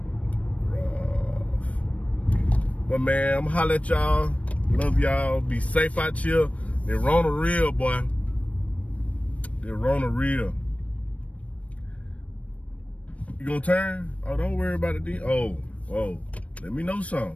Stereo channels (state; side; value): late; right; 0.065 ms